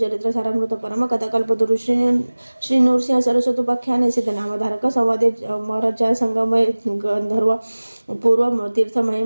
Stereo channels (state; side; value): inverted; both; correlation -1.00